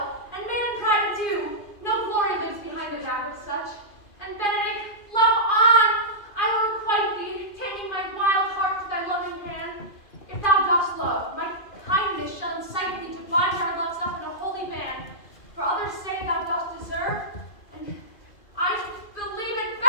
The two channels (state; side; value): late; right; 2.4 ms